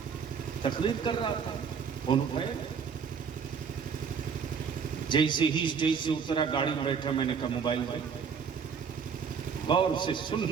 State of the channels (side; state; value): left; quieter; 6.4 dB